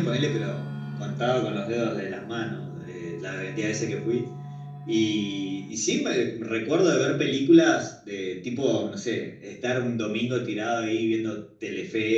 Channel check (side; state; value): both; identical; correlation 1.00